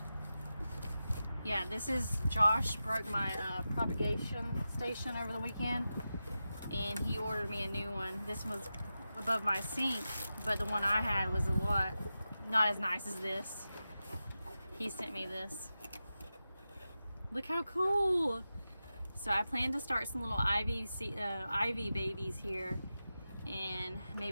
Yeah, this is Josh broke my propagation station over the weekend, and he ordered me a new one. This one was above my sink, but the one I had was a lot not as nice as this. He sent me this. Look how cool! So I plan to start some little ivy babies here, and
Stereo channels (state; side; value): inverted; both; correlation -0.92